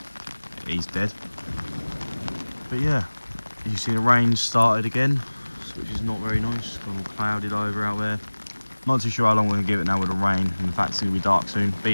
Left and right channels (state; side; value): inverted; both; correlation -1.00